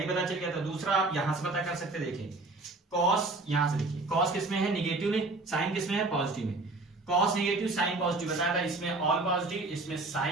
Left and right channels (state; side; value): quieter; left; 3.2 dB